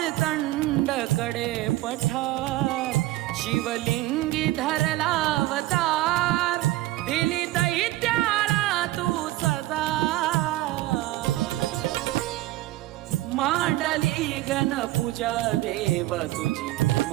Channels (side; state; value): left; quieter; 17.2 dB